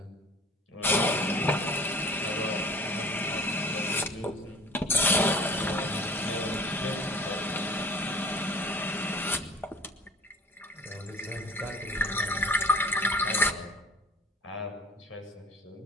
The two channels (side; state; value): both; normal; correlation 0.46